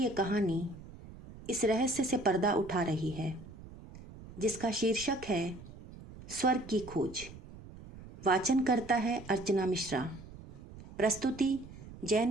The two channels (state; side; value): noise; right; rumble, 16 dB below the sound